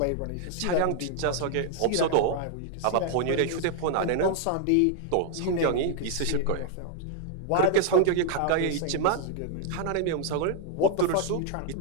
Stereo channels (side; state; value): both; different; correlation 0.00